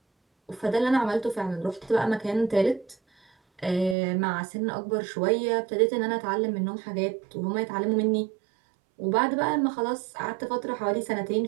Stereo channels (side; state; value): left; drops out; at 4.0 s